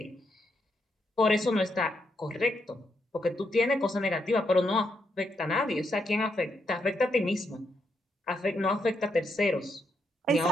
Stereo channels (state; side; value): normal; both; correlation 0.79